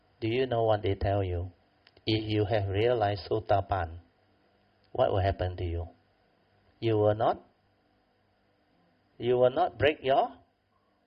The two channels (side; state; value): both; identical; correlation 1.00